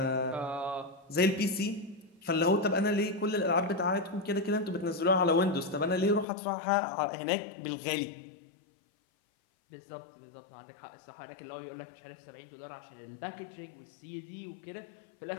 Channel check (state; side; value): drops out; right; at 6.2 s